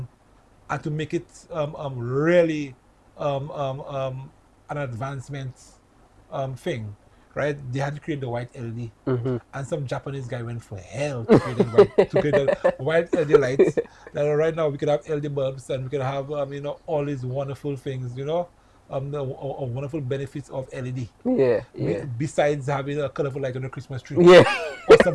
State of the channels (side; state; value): both; identical; correlation 1.00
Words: and to make it really an advancement thing, right? They had to create the white LED, and some Japanese guy went for hell to create the white LED lights. That right now we could have LED bulbs and we could have all these wonderful things, the wonderful benefits of LED. Besides having a colorful light on the Christmas tree. Or